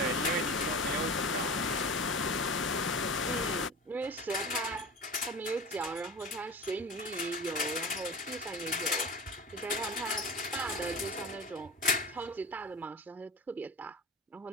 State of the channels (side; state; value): both; normal; correlation 0.33